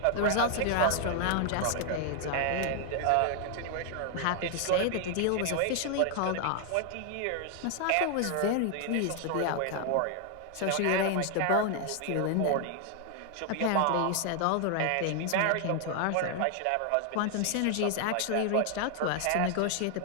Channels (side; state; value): both; different; correlation 0.00